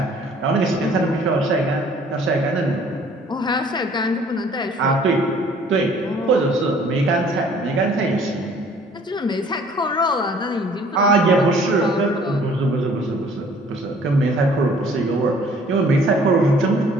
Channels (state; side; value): normal; both; correlation 0.55